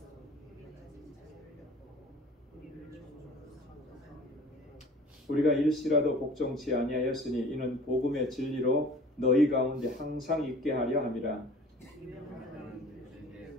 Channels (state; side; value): normal; both; correlation 0.46